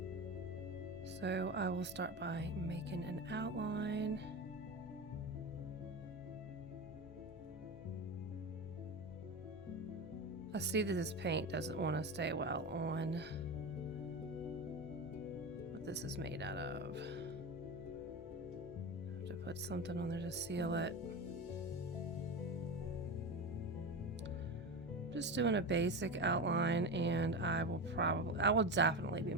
So I will start by making an outline. I see that this paint doesn't want to stay well on what this is made out of. I have to put something on there to seal it. Just doing a basic outline, and I will definitely be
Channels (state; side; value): normal; both; correlation 0.21